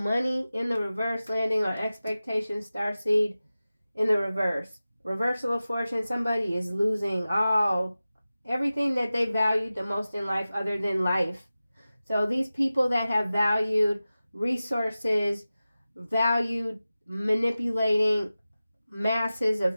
in the reverse, landing on expectation, starseed in the reverse. Reversal of fortune. Somebody is losing everything that they valued the most in life other than life. So these people that have valued resources, valued manipulating masses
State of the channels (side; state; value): both; inverted; correlation -0.96